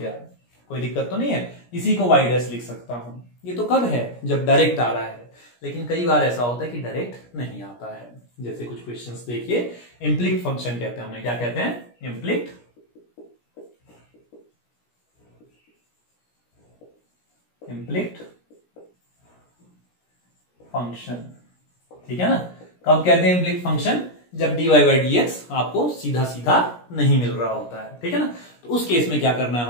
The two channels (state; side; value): late; right; 17 ms